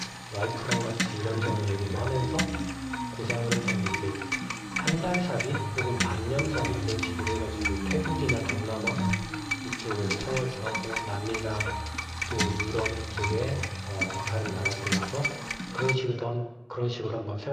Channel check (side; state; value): both; identical; correlation 1.00